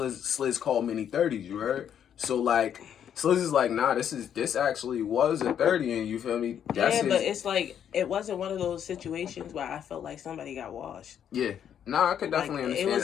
call many 30s, you heard? So, like, Sliz is like, nah, this actually was a 30, and you feel me? But it's like, it wasn't one of those situations where I felt like somebody got washed. Yeah. Nah, I could definitely understand. It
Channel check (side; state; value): right; quieter; 9.1 dB